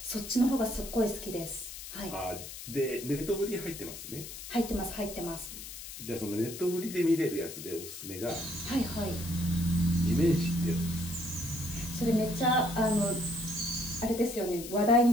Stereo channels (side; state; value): left; noise; hiss, 11 dB below the sound